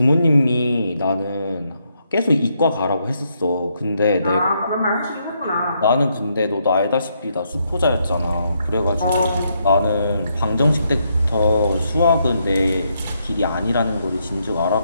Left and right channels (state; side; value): inverted; both; correlation -0.77